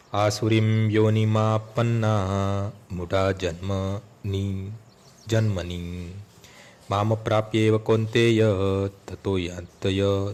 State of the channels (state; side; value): identical; both; correlation 1.00